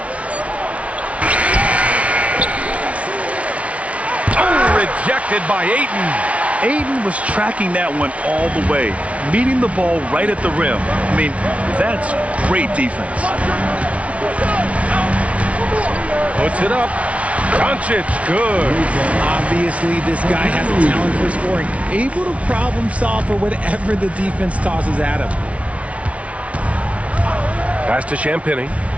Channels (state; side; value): late; left; 0.064 ms